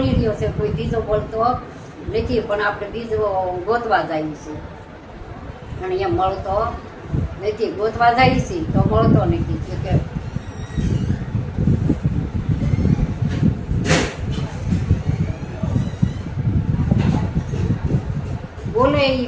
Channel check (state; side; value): identical; both; correlation 1.00